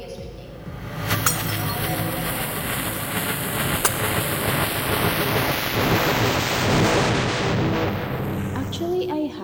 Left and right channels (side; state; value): both; identical; correlation 1.00